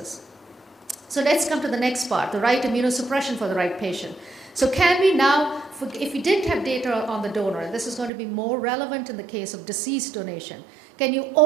So let's come to the next part, the right immunosuppression for the right patient. So can we now, if we did have data on the donor, and this is going to be more relevant in the case of deceased donation, can you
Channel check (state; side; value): drops out; left; at 8.1 s